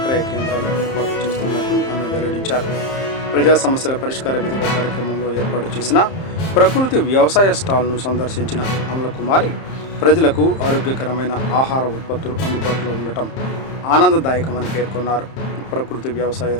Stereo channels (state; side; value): late; right; 30 ms